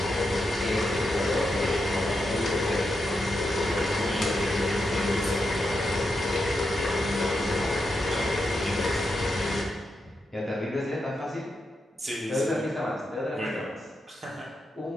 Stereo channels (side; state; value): both; normal; correlation 0.85